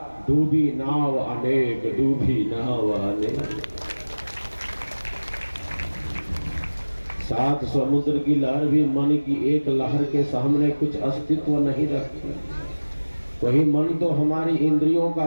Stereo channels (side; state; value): both; inverted; correlation -1.00